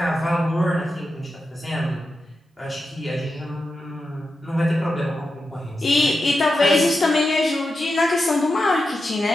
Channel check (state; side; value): normal; both; correlation 0.89